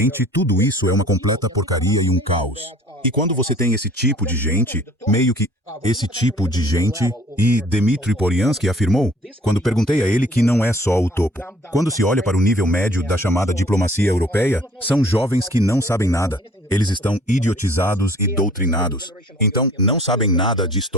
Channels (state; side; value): normal; both; correlation 0.53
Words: tudo isso é uma completa porcaria e um caos. E quando você tem esse tipo de gente, meio que esse tipo de gente, e Dmitry Polyansky afirmou, quando perguntei a ele que não é só o topo. Quando se olha para o nível médio da chamada diplomacia europeia, são jovens que não sabem nada. Eles estão idiotizados e doutrinados. Então, não sabem nada de